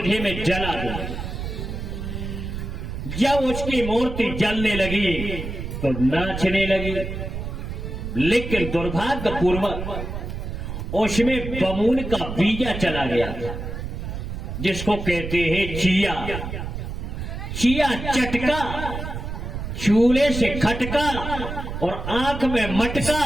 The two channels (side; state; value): right; noise; rumble, 6 dB below the sound